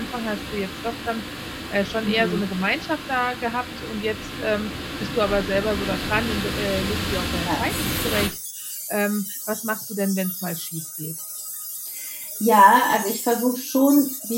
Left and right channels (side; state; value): both; identical; correlation 1.00